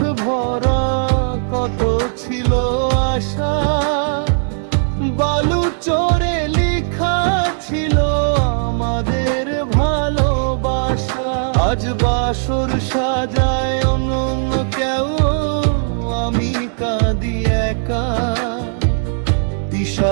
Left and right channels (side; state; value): left; silent; digital silence